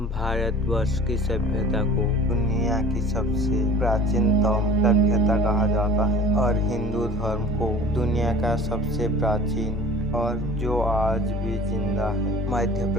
की सभ्यता को दुनिया की सबसे प्राचीनतम सभ्यता कहा जाता है और हिंदू धर्म को दुनिया का सबसे प्राचीन और जो आज भी जिंदा है। मध्य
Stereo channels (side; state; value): both; normal; correlation 0.44